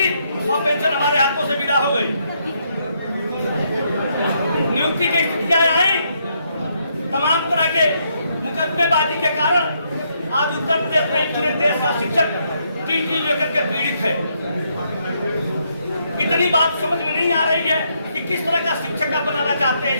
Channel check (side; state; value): both; inverted; correlation -0.75